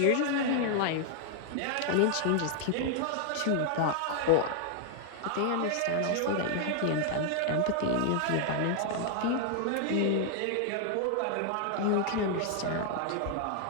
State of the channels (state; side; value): different; both; correlation 0.00